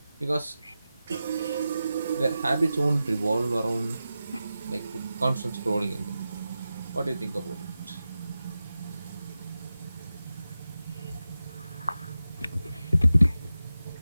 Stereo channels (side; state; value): both; inverted; correlation -0.92